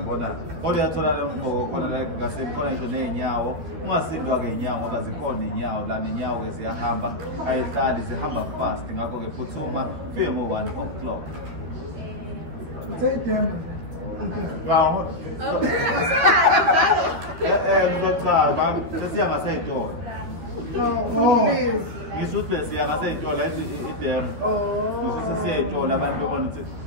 Kodwa yatholakala umqobo khona la eGagasini khona nje ney'nyawo. Ungasindwa-ke iy'nyawo ngoba zikhona iy'nyawo lana iy'nyawo-ke ziyahamba ayihlali zihamba fast ngakho-ke phuthuma fike ngo-1 o'clock. Ngizochama sesiya ngasey'tolo. Ngisho ukuthi besiya ngasey'tolo idemo. Ngisho sesiya ey'tolo abantu bebona ukuthi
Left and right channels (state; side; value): late; left; 13 ms